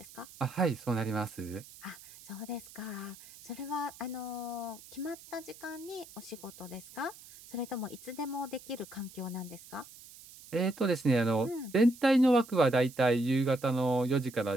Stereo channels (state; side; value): noise; right; hiss, 19 dB below the sound